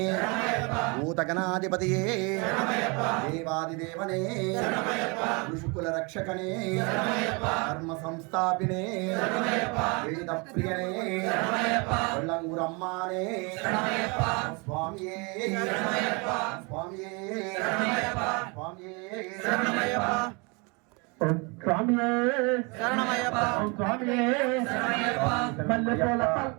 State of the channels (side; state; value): left; quieter; 30.2 dB